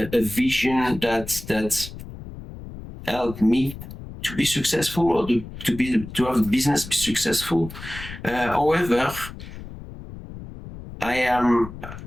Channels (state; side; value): noise; left; rumble, 13 dB below the sound